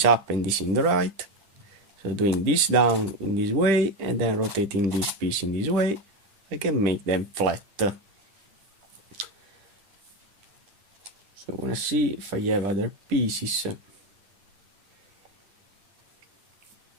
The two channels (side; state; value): left; late; 10 ms